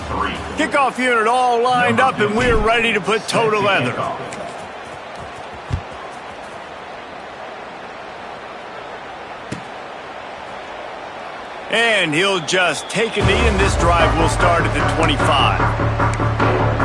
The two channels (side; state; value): both; identical; correlation 1.00